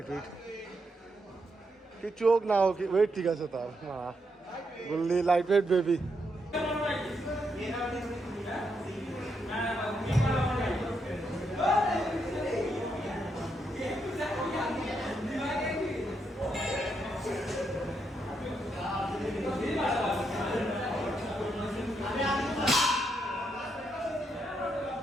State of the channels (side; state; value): both; normal; correlation 0.80